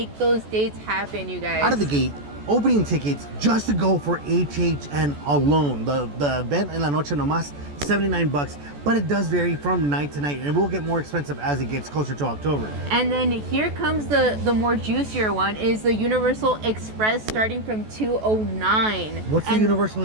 those dates happen, you guys. Out of the gate, opening tickets just to go for HHN alone. The event en la noche nomás, 79 bucks, but it does vary from night to night and it will get more expensive as it gets closer to October. And then here comes the more juicier one, is the Universal Express starting from $209. What's the Universal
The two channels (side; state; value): left; late; 14 ms